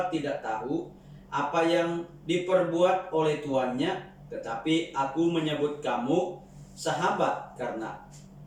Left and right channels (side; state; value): both; identical; correlation 1.00